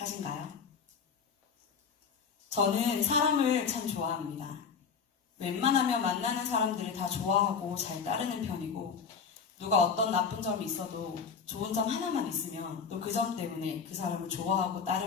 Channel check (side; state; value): right; quieter; 6.0 dB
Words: 저는 사람을 참 좋아합니다. 웬만하면 만나는 사람들을 다 좋아하고 잘 따르는 편이고, 누가 어떤 나쁜 점이 있어도 좋은 점 하나만 있으면 또 그 점 때문에 그 사람을 좋아하고